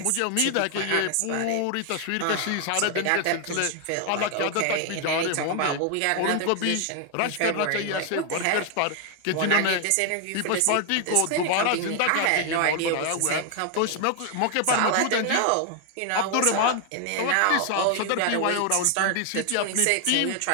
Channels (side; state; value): both; different; correlation 0.00